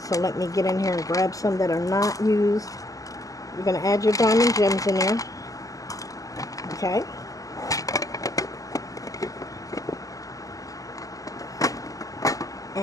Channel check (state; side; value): late; right; 0.17 ms